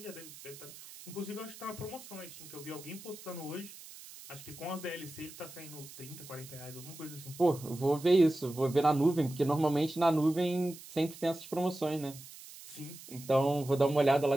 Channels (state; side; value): noise; right; hiss, 16 dB below the sound